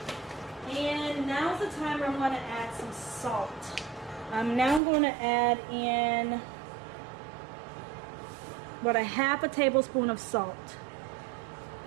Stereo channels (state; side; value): drops out; left; at 4.8 s